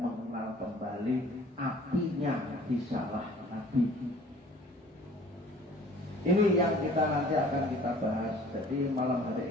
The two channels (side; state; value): both; normal; correlation 0.51